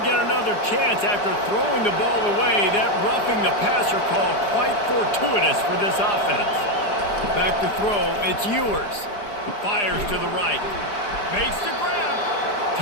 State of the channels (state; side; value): late; right; 4.9 ms